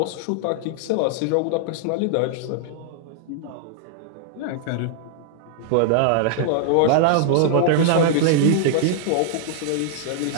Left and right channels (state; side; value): different; both; correlation -0.01